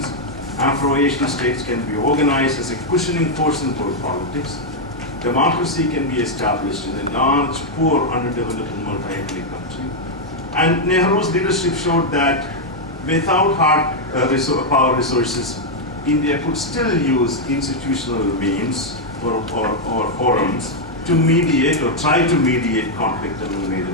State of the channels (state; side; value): normal; both; correlation -0.01